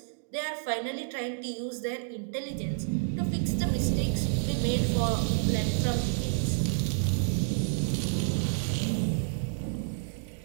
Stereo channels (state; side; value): silent; left; digital silence